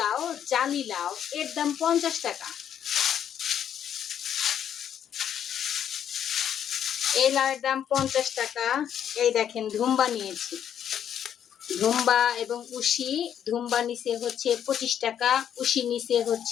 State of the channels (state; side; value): quieter; right; 9.3 dB